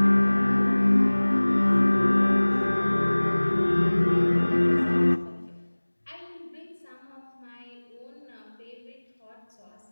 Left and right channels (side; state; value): both; inverted; correlation -1.00